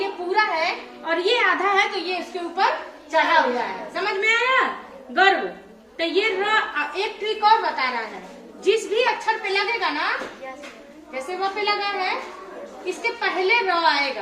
पूरा है, और ये आधा है तो ये इसके ऊपर चढ़ा हुआ है। समझ में आया? गर्व। तो ये एक ट्रिक और बता रहा है, जिस भी अक्षर पे लगेगा ना, जैसे वो पे लगा है, इसके पहले र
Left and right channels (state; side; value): identical; both; correlation 1.00